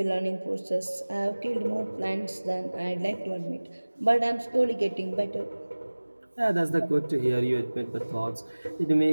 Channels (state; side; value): inverted; both; correlation -1.00